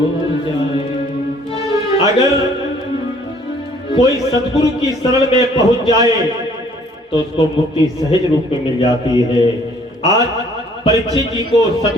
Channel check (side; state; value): both; normal; correlation 0.58